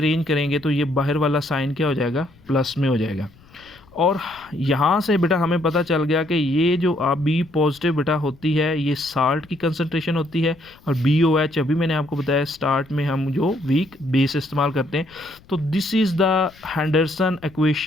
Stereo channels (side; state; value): left; noise; rumble, 26 dB below the sound